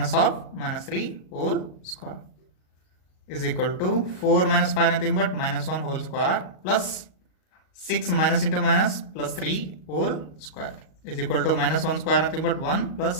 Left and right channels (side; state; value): right; late; 38 ms